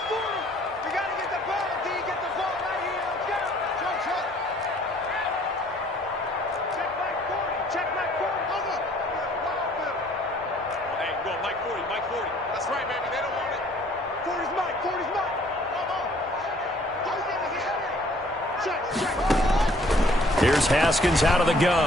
Here's Haskins out of the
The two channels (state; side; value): normal; both; correlation 0.59